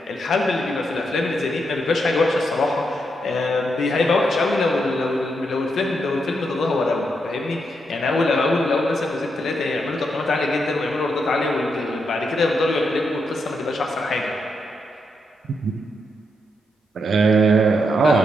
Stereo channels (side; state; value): both; normal; correlation 0.81